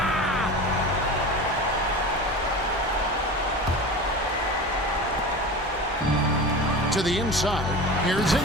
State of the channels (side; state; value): both; normal; correlation 0.31